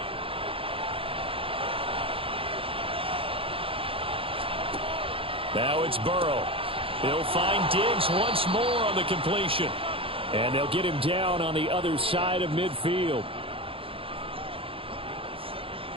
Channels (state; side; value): late; left; 0.27 ms